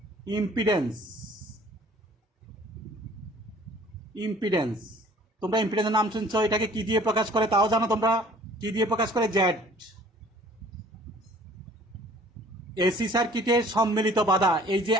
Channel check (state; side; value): normal; both; correlation 0.52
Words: impedance, impedance. তোমরা ইম্পিডেন্সের নাম শুনছ। এটাকে কি দিয়ে প্রকাশ করে তাও জানো তোমরা? কি দিয়ে প্রকাশ করে? জেড। এসি সার্কিটের সম্মিলিত বাধা, এই যে